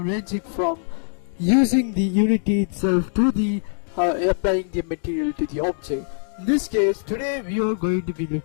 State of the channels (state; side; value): silent; right; digital silence